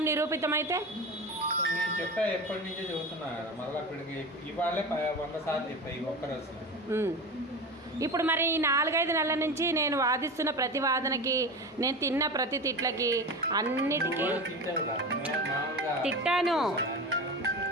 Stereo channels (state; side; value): normal; both; correlation 0.27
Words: నిరూపితమైతే నేను చెప్పా, ఎప్పటి నుంచో చెబుతున్నా కదా, మళ్ళీ అక్కడికి ఇవాళే 100 సార్లు చెప్పా ఈ ఒక్కరోజు. ఇప్పుడు మరి ఈ 4-5 నెలల నుంచి నేను వాదిస్తున్న ప్రతి వాదనకి, నేను తిన్న ప్రతి తిట్లకి అన్నిటికీ